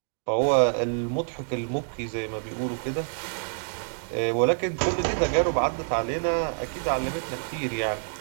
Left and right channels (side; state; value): left; silent; digital silence